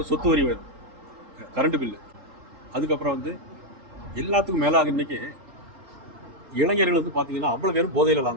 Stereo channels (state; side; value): late; left; 4.3 ms